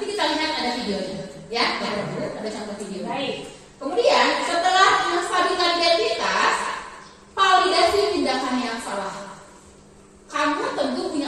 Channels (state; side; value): identical; both; correlation 1.00